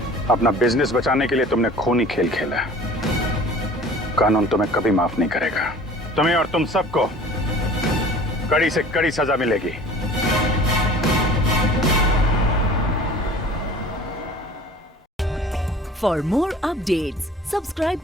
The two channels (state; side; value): normal; both; correlation 0.45